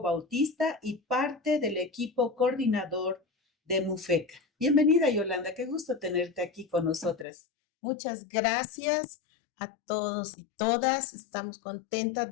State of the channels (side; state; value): right; drops out; at 7.2 s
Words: Bautista y parte del equipo coordinador de MUFECA. Bienvenida, Yolanda, qué gusto tenerte aquí con nosotras. Muchas gracias a todos y todas. Estamos contentas